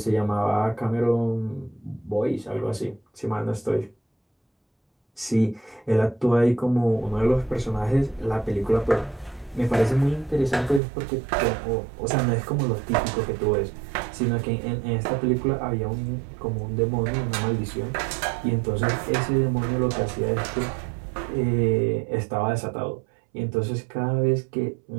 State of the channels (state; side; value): drops out; left; at 10.8 s